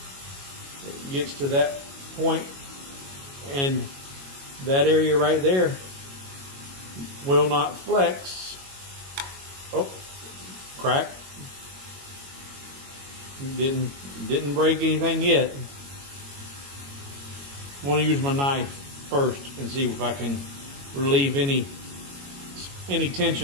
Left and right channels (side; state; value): left; late; 22 ms